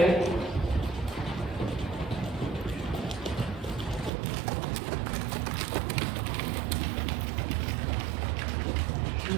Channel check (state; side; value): drops out; left; at 4.1 s